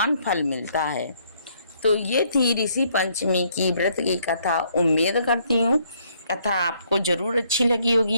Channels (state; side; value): inverted; both; correlation -0.68